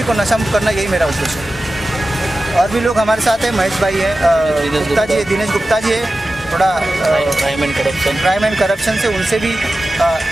को नशा मुक्त करना, यही मेरा उद्देश्य है। और भी लोग हमारे साथ हैं, महेश भाई है, गुप्ता जी है, दिनेश गुप्ता जी है, थोड़ा क्राइम एंड करप्शन से, उनसे भी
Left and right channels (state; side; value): normal; both; correlation 0.94